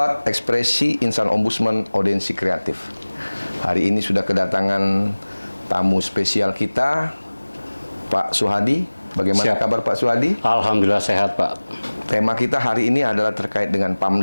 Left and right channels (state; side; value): inverted; both; correlation -1.00